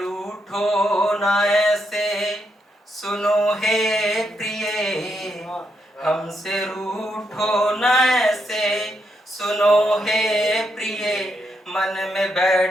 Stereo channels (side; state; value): both; normal; correlation 0.80